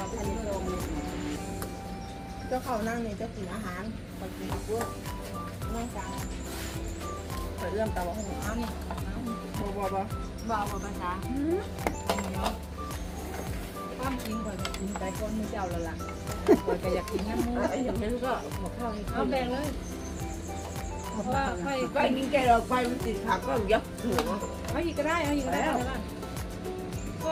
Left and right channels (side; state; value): both; identical; correlation 1.00